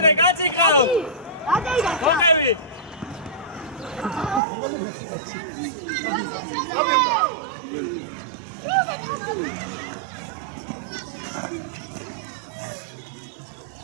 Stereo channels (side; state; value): left; drops out; at 4.4 s